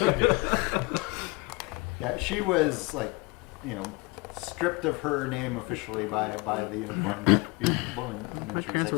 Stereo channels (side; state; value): right; quieter; 26.7 dB